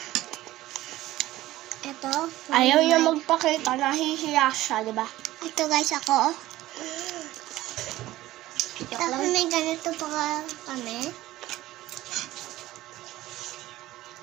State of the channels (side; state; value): left; quieter; 16.1 dB